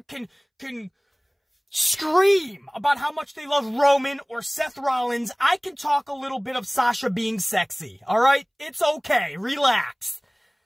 can scream about how much they love Roman or Seth Rollins, I can talk a little bit of Sasha being sexy. Alright? It's okay. Relax.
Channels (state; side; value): identical; both; correlation 1.00